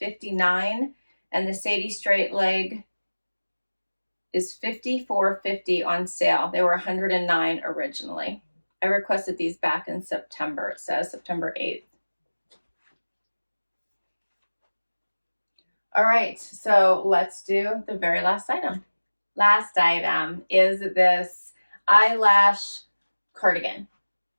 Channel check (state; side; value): inverted; both; correlation -1.00